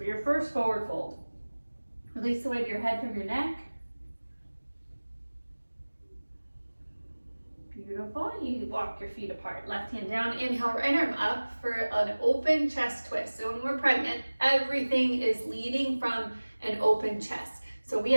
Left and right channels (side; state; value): both; inverted; correlation -1.00